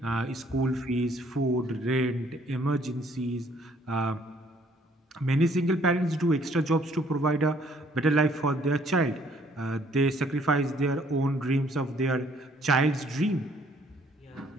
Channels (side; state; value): both; normal; correlation 0.63